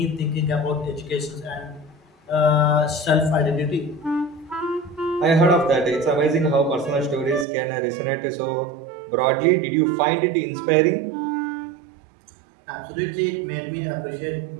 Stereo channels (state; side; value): drops out; left; at 7.5 s